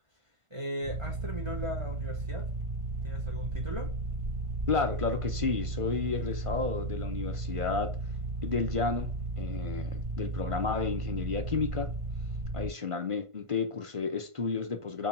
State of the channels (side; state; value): left; late; 1.5 ms